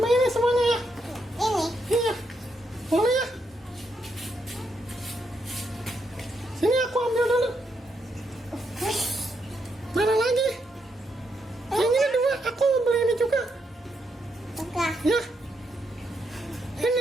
ini semuanya ya. Ini. Iya. Boleh ya. Sini aku ambil dulu. Mana lagi? Yang ini dua, aku beli ini juga. Enggak. Ya.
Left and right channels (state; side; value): normal; both; correlation 0.79